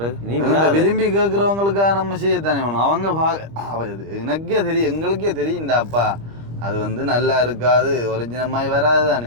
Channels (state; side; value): late; left; 25 ms